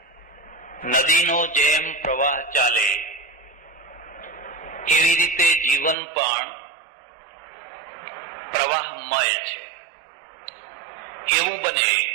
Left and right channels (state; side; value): drops out; left; at 6.0 s